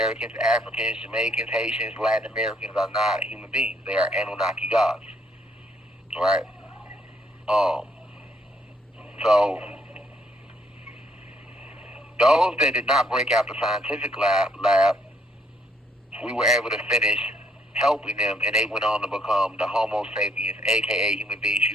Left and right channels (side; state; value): both; normal; correlation 0.69